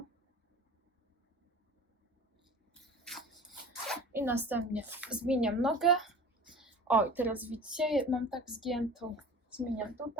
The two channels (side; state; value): both; normal; correlation 0.39